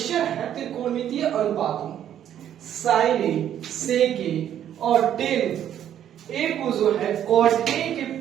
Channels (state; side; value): quieter; left; 10.4 dB